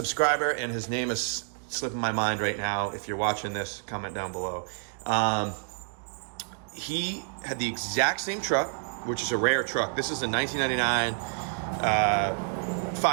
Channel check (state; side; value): silent; left; digital silence